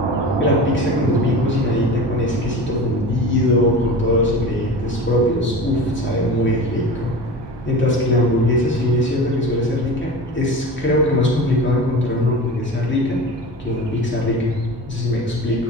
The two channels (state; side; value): normal; both; correlation 0.32